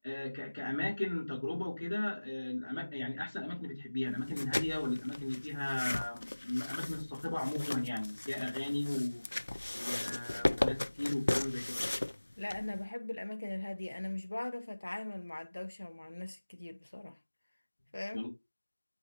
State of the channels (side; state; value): both; inverted; correlation -1.00